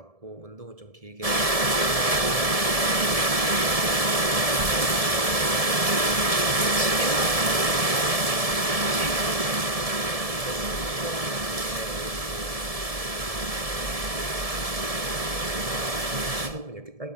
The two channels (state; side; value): late; left; 1.7 ms